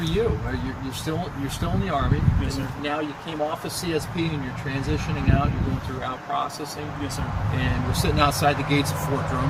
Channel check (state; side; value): identical; both; correlation 1.00